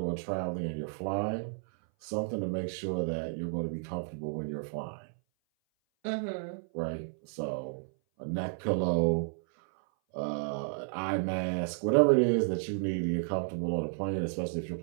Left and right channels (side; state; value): left; silent; 56 dB below the other